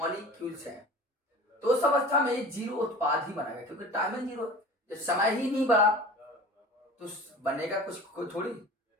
है, तो उस अवस्था में ये जीरो उत्पाद ही बनेगा, क्योंकि टाइमिंग जीरो, जब समय ही नहीं बढ़ा तो बनेगा कुछ थोड़ी।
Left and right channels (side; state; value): both; normal; correlation 0.39